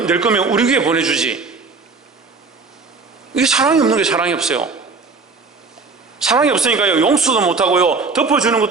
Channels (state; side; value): quieter; left; 4.4 dB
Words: 거면 우리 교회에 보내주지. 이게 사랑이 없는 게 사랑이 없어요. 사랑이 없으니까요, 용서도 못하고요, 덮어주는